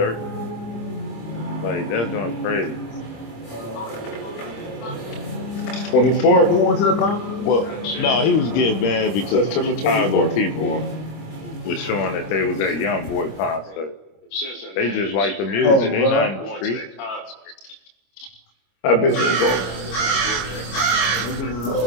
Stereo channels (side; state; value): right; late; 26 ms